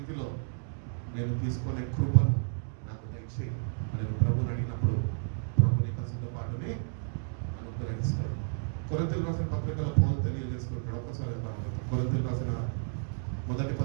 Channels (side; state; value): left; silent; digital silence